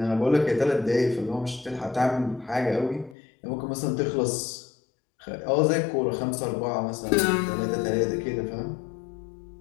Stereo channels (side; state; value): right; drops out; at 3.2 s